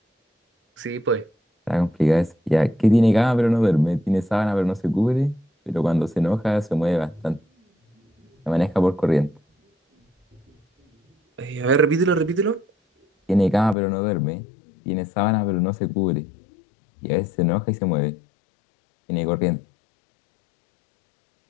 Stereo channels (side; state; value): right; drops out; at 13.8 s